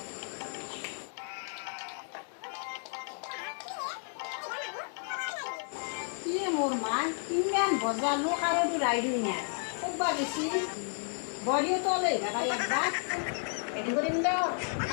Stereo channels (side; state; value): right; silent; 56 dB below the other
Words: কি মোৰ মা ইমান বজালো কাৰোটো ৰাইডো নাই ক'বা বেছি বৰিও তলে ভাড়া একবাৰ এদিন কৰিম দিয়ক